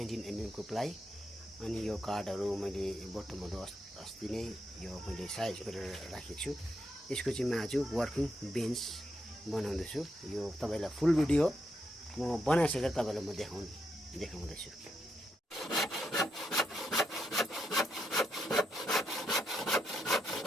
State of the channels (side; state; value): both; normal; correlation 0.81